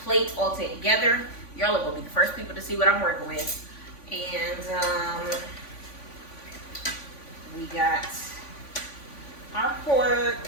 plate all together, y'all are going to be the first people to see what I'm working with. And we got our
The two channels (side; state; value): right; late; 3.5 ms